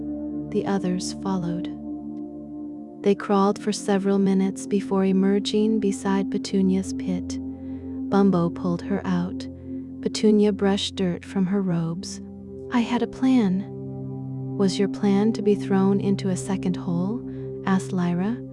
The others followed. They crawled for several minutes before emerging beside Petunia's pit. Bumbo pulled her out. Petunia brushed dirt from her robes. I had a plan. Was your plan to be thrown into a second hole? Asked Lyra.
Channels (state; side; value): identical; both; correlation 1.00